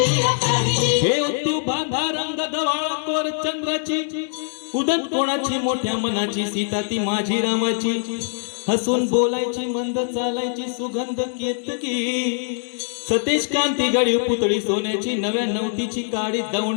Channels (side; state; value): right; silent; 64 dB below the other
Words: हे तू बांधा रंग गवाळावर चंद्राची, उदत कोणाची मोठ्या मनाची, सीता ती माझी रामाची. हसून बोलायची, मंद चालायची, सुगंध केतकी. सतेज कांती गडी पुतळी सोन्याची, नव्या नवतीची काडी